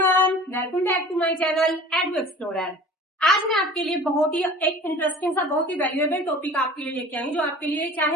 welcome back to my channel Edu Explorer. आज मैं आपके लिए बहुत ही एक इंटरेस्टिंग सा बहुत ही वैल्यूएबल टॉपिक आपके लिए लेके आई, जो आपके लिए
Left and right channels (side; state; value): both; normal; correlation 0.43